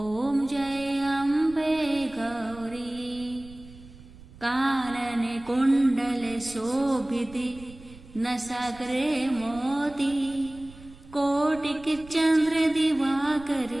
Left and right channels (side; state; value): right; noise; rumble, 20 dB below the sound